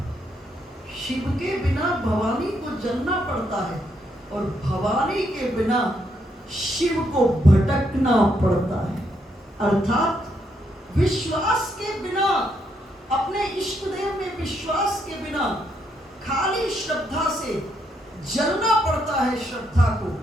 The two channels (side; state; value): both; normal; correlation 0.76